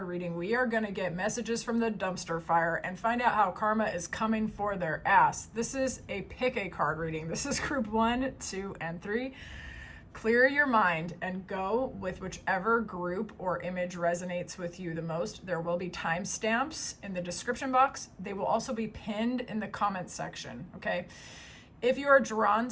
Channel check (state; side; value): identical; both; correlation 1.00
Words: reading, we are going to get messages from the dumpster fire and find out how karma is coming for their ass. This is a Pick a Card reading. This is group 1, 2, and 3. Clear your mind and go with whichever group or image resonates with you the most. There will be timestamps in the description box. They will also be pinned in the comment section, okay? If you are drawn